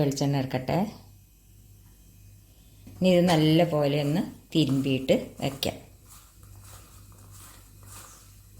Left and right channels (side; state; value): both; identical; correlation 1.00